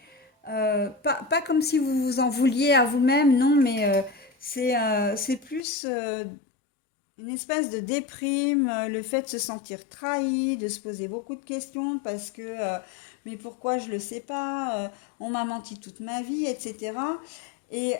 pas comme si vous vous en vouliez à vous-même, non, mais c'est plus une espèce de déprime, le fait de se sentir trahi, de se poser beaucoup de questions parce que mais pourquoi je ne le sais pas, on m'a menti toute ma vie, etc. Et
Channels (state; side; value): drops out; right; at 5.6 s